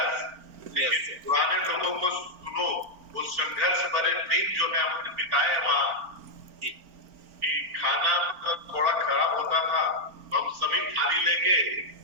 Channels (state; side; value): late; left; 4.4 ms